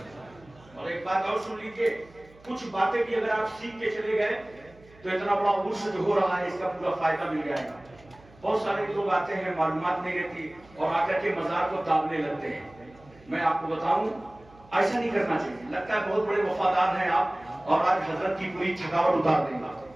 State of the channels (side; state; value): right; noise; hum, 25 dB below the sound